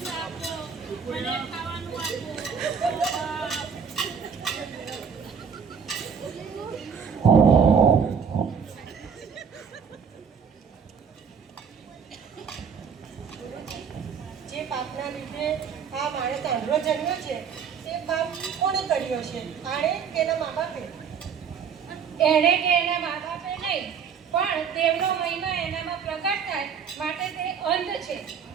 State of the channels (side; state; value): left; quieter; 6.8 dB